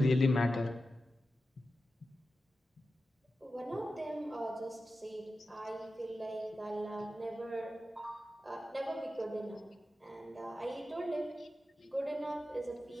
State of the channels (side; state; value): both; normal; correlation 0.92